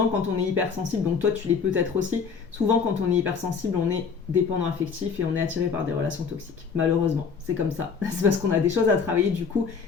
quand on est hypersensible, donc toi tu l'es peut-être aussi, souvent quand on est hypersensible, on est dépendant affectif et on est attiré par des relations toxiques. Malheureusement, c'est comme ça. C'est parce qu'on a des choses à travailler du coup.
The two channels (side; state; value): right; quieter; 5.7 dB